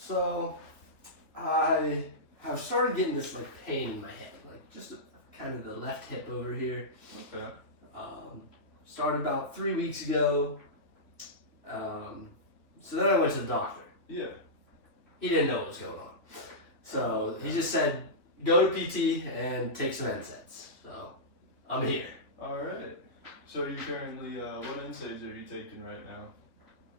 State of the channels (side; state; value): right; late; 3.1 ms